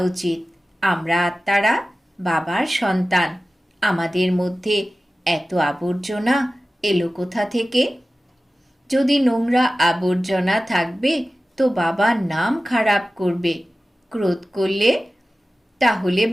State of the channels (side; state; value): both; normal; correlation 0.96